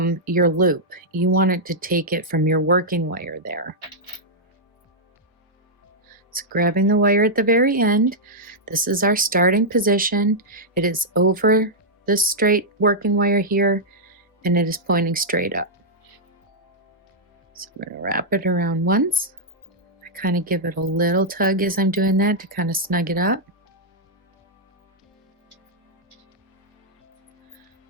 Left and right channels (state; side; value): normal; both; correlation -0.06